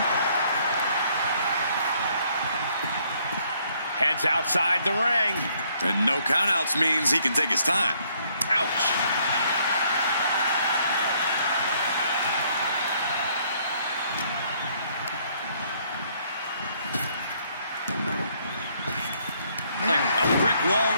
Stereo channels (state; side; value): inverted; both; correlation -0.67